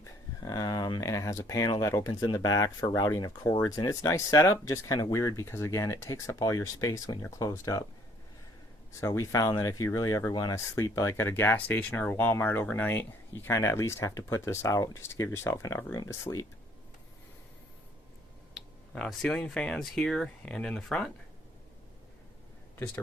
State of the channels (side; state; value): both; normal; correlation 0.62